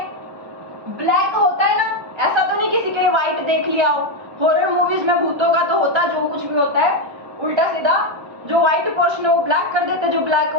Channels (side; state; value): left; late; 1.3 ms